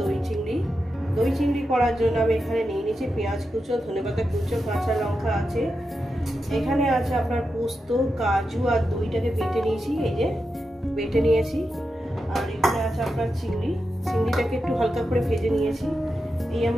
দই চিংড়ি। দই চিংড়ি করার জন্য আমি এখানে নিয়ে নিয়েছি পেঁয়াজ কুচো, ধনেপাতা কুচো, কাঁচা লঙ্কা আছে, এখানে আছে আপনার পোস্ত, কাজু আর দইটাকে বেটে নিয়েছি, এই যে বেটে নিয়েছি। আর এখানে আছে আপনার চিংড়িটাকে একটু হালকা করে ভেজে নিয়েছি, এই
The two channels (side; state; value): both; normal; correlation 0.88